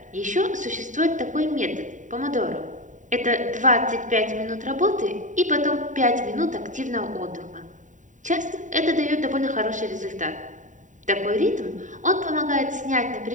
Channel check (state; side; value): late; left; 0.36 ms